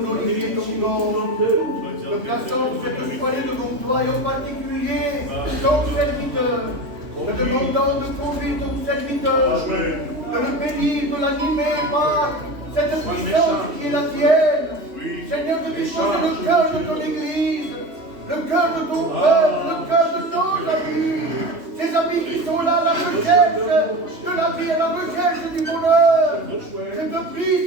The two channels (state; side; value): late; left; 3.2 ms